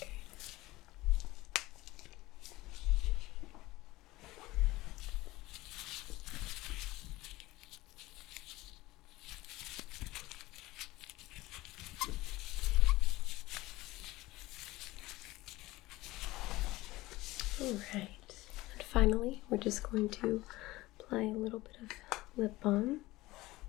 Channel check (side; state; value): right; quieter; 18.9 dB